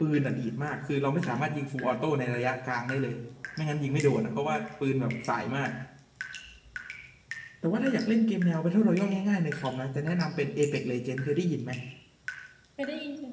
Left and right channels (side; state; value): both; identical; correlation 1.00